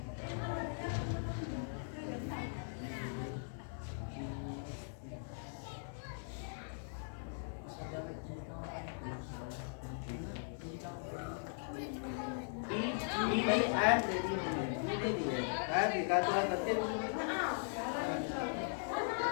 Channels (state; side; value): silent; right; digital silence